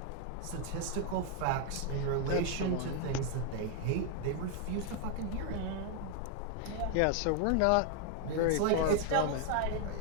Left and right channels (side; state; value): both; different; correlation 0.00